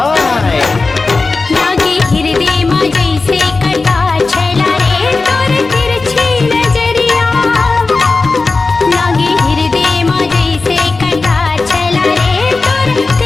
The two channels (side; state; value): right; quieter; 3.8 dB